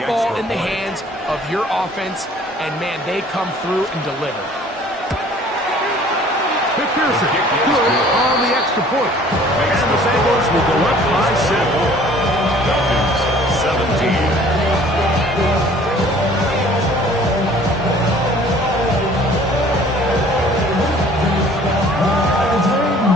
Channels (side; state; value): both; normal; correlation 0.53